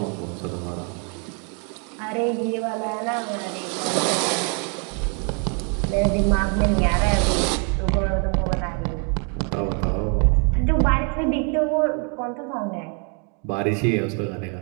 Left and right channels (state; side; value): quieter; left; 37.8 dB